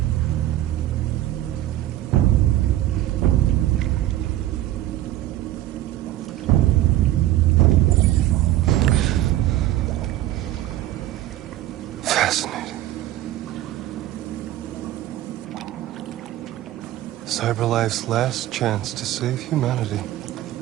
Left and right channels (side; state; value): left; quieter; 14.2 dB